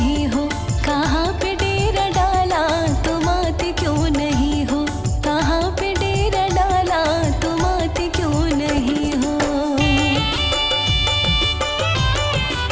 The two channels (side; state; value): both; identical; correlation 1.00